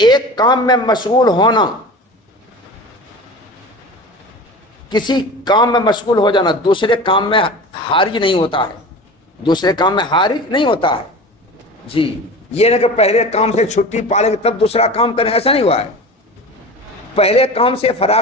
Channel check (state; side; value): normal; both; correlation 0.34